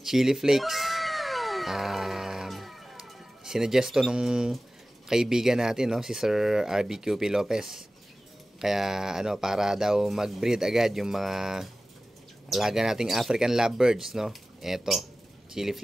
chili flakes. Sinuggest to nung kaibigan natin, no? Si Sir RBQP Lopez. Kaya, para daw mag-breed agad yung mga alaga nating African lovebirds, no? Eto, chili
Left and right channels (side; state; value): both; normal; correlation 0.96